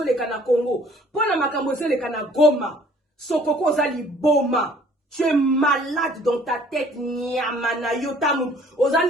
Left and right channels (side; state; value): both; normal; correlation 0.56